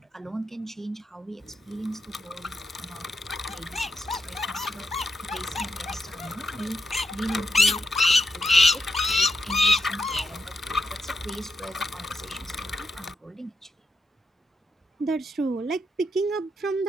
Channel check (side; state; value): both; normal; correlation 0.84